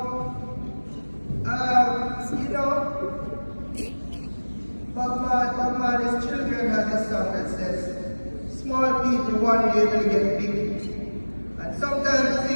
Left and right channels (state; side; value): inverted; both; correlation -1.00